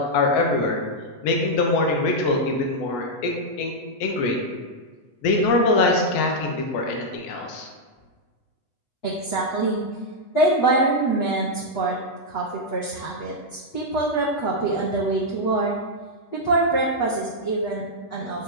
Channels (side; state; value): right; late; 8.1 ms